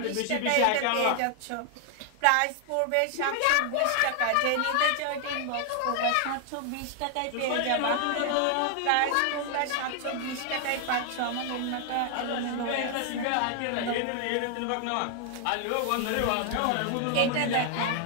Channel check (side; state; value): both; different; correlation 0.00